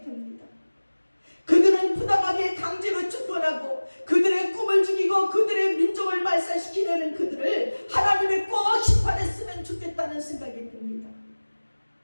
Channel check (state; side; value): inverted; both; correlation -1.00